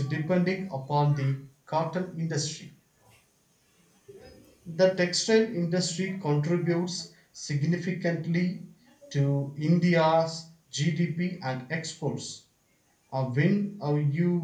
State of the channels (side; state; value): both; identical; correlation 1.00